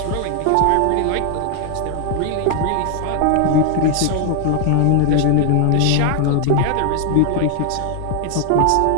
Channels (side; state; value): both; different; correlation 0.00